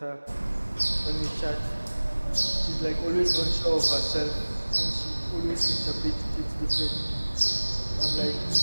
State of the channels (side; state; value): both; inverted; correlation -1.00